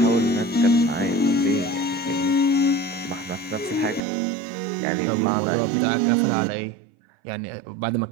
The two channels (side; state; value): left; drops out; at 4.0 s